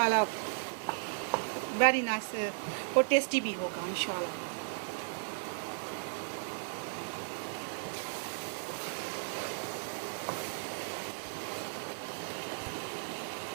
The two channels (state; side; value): silent; left; digital silence